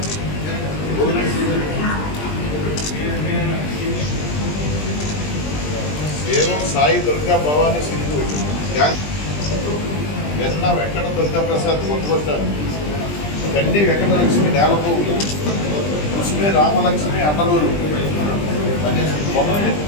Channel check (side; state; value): right; late; 20 ms